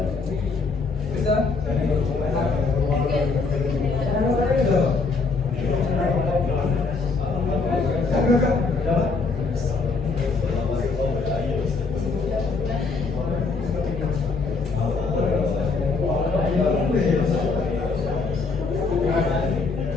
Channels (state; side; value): quieter; right; 4.2 dB